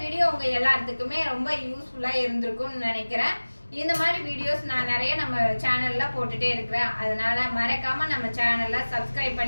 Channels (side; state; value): both; inverted; correlation -1.00